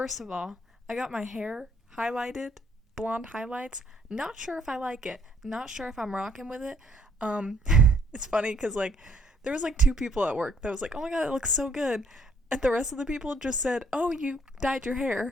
of all, I got my hair highlighted, blonde highlights. Not sure if I like it. Not sure if I'm rocking with it. It's funny because, there was, two people at work that was like, oh my god, it looks so good. And the rest of the people just said, oh, you dyed your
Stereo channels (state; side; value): normal; both; correlation 0.66